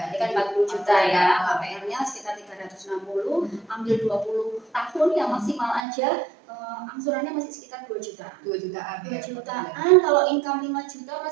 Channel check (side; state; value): left; drops out; at 5.8 s